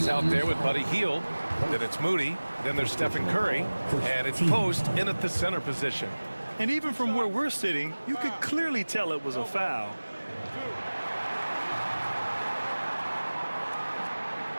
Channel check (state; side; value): inverted; both; correlation -1.00